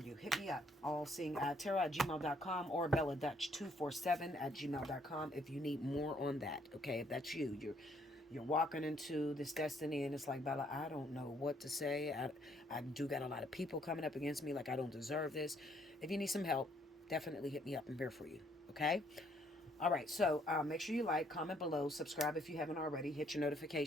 Hit me up. Allseeingeyetarot@gmail.com or BellaDutch247@gmail.com if you need more on that. Okay? If that's you. You're walking into this destiny, and it's like, Bella, I don't know what to say. I do got a lot of people coming up against me like I don't deserve this. If you need some help, definitely hit me up. I'm here for you. Okay? All right, so make sure you like, comment below, subscribe if you haven't already, hit your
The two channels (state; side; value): normal; both; correlation 0.67